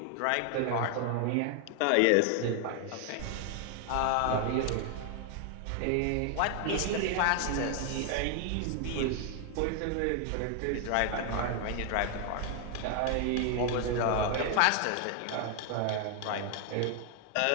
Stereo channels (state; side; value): different; both; correlation 0.00